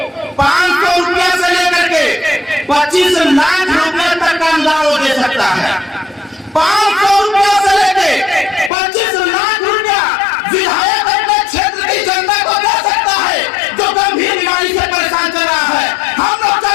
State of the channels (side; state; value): right; drops out; at 8.7 s